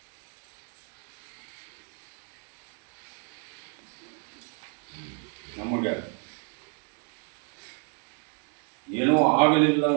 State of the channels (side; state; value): left; quieter; 38.3 dB